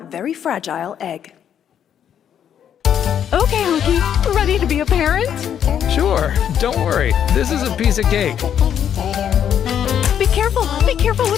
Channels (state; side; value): quieter; right; 9.2 dB